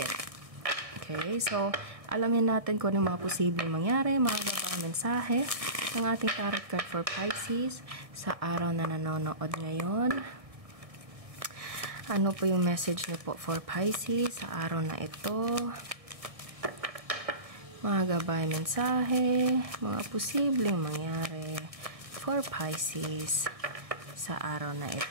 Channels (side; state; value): left; late; 1.6 ms